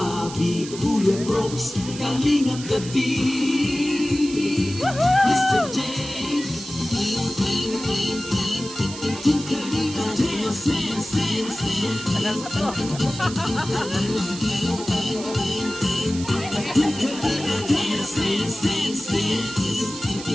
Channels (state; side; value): noise; right; hiss, 12 dB below the sound